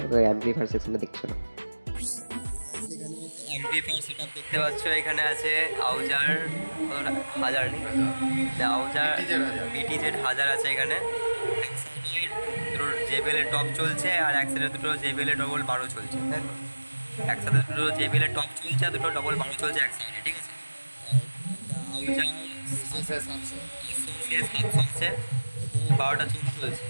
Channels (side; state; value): both; inverted; correlation -1.00